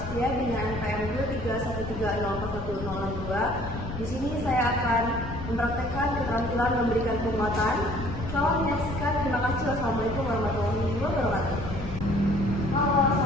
dengan NPM 231304162. Di sini saya akan mempraktekkan keterampilan memberikan penguatan. Selamat menyaksikan. Terima kasih. Wassalamualaikum warahmatullahi wabarakatuh. Halo,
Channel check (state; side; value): noise; left; rumble, 9 dB below the sound